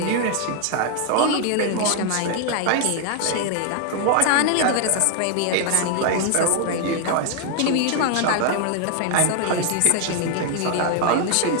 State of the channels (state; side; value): different; both; correlation 0.00